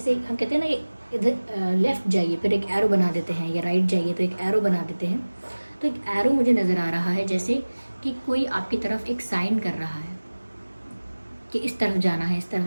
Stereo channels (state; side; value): inverted; both; correlation -1.00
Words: हम कहते हैं ना कि इधर लेफ़्ट जाइए फिर एक एरो बना देते हैं, या राइट जाइए तो एक एरो बना देते हैं। तो एक एरो मुझे नज़र आ रहा है जैसे कि कोई आपकी तरफ एक साइन कर रहा है कि इस तरफ जाना है, इस तरफ